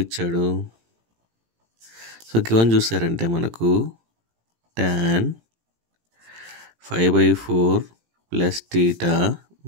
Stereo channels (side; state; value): left; late; 18 ms